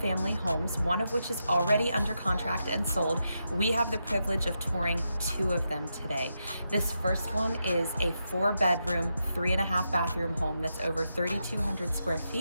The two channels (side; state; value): both; inverted; correlation -0.85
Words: homes, one of which is already under contract and sold. We have the privilege of touring 2 of them today. This first one is a 4-bedroom, 3.5 bathroom home that's over 3,200 square